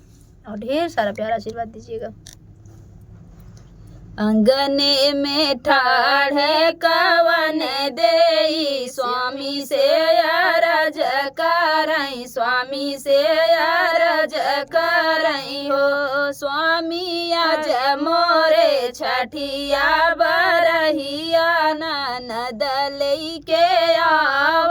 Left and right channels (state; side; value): identical; both; correlation 1.00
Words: और ढेर सारा प्यारा आशीर्वाद दीजिएगा। अंगने में ठाढ़ कवन देई स्वामी से अरज करई, स्वामी से अरज करई हो। स्वामी आज मोरे छठिया बरहिया ननद लइके